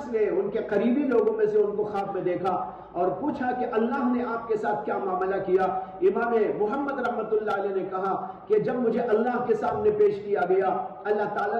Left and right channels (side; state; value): both; identical; correlation 1.00